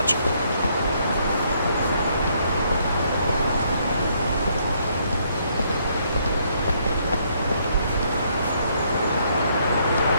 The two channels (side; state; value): both; inverted; correlation -0.70